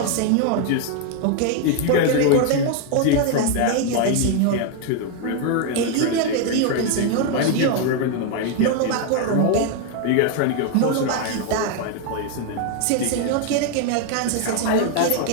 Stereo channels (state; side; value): different; both; correlation 0.01